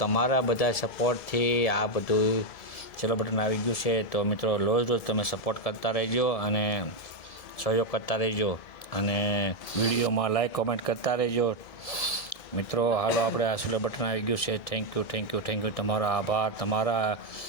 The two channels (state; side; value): late; right; 1.7 ms